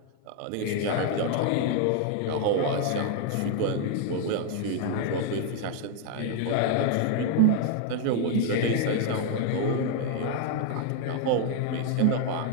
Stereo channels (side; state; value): both; different; correlation 0.00